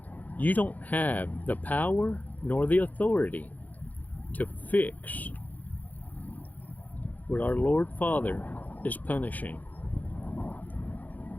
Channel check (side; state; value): right; late; 0.080 ms